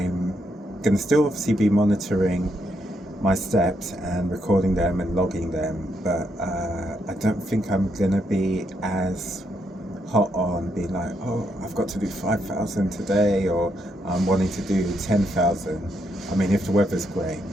gonna still obviously be monitoring my steps and recording them and logging them, but I don't think I'm gonna be as hot on being like, oh, I've got to do 5,000 today, or I'm wanting to do 10,000. I mean, if the weather's great,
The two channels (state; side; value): normal; both; correlation 0.78